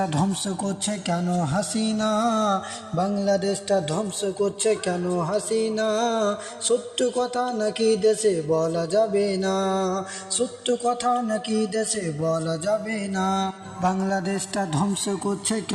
ধ্বংস করছে কেন হাসিনা, বাংলাদেশটা ধ্বংস করছে কেন হাসিনা। সত্য কথা নাকি দেশে বলা যাবে না, সত্য কথা নাকি দেশে বলা যাবে না। বাংলাদেশটা ধ্বংস করছে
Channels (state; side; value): identical; both; correlation 1.00